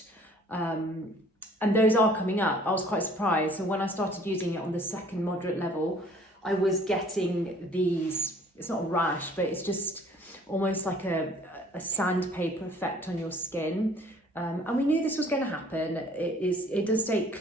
And those are coming up. I was quite surprised. So when I started using it on the second moderate level, I was getting these, it's not a rash, but it's just almost like a sandpaper effect on your skin. And we knew this was going to happen. It does state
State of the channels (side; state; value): both; normal; correlation 0.54